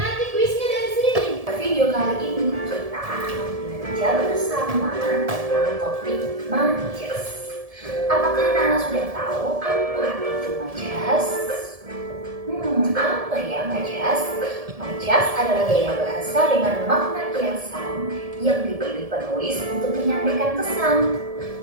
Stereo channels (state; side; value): late; left; 1.7 ms